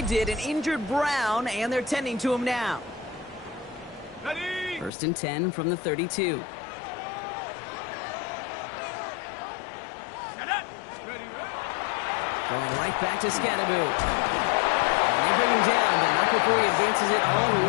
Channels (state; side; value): drops out; right; at 4.9 s